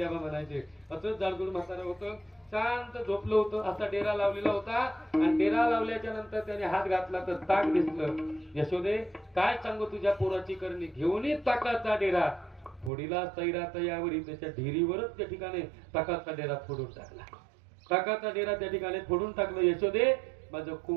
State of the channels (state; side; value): drops out; left; at 12.9 s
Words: बाबा म्हणायचे असंच जाडजूड म्हातारा होतं. शांत झोपलं होतं. असा डेरा लावलेला होता आणि डेरा लावल्याच्या नंतर त्याने हात घातला तर ताक दिसलं. यशोदे काय सांगू तुझ्या पोराची करणी. घेऊन ताकाचा डेरा फोडीला सैरा तयावरी. त्याच्या ढेरीवरच त्या ठिकाणी ताकाचा डेरा फोडून टाकला. ताकाचा डेरा त्या ठिकाणी फोडून टाकलं. यशोदे माझं